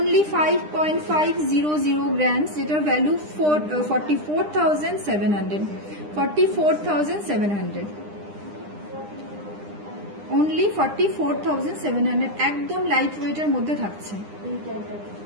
5.500 গ্রামস, যেটার ভ্যালু 44,700, 44,700, অনলি 44,700, একদম লাইট ওয়েটের মধ্যে থাকছে।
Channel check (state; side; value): late; left; 9.9 ms